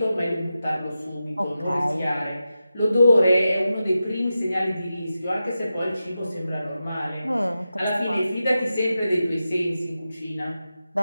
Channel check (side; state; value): both; inverted; correlation -0.91